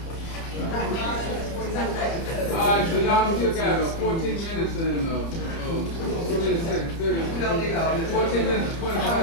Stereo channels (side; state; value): right; late; 30 ms